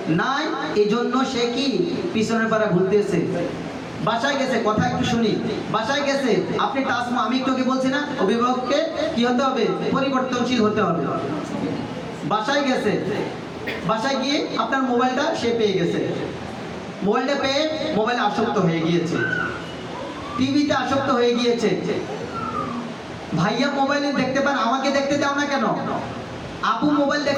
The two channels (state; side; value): identical; both; correlation 1.00